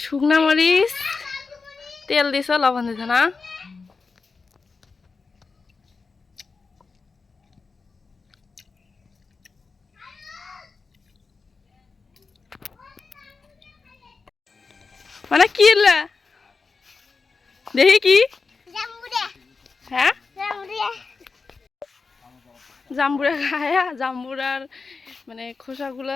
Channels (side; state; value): right; quieter; 4.5 dB